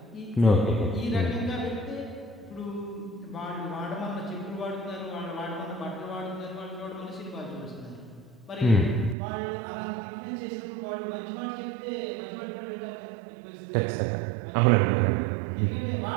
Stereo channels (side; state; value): left; drops out; at 9.2 s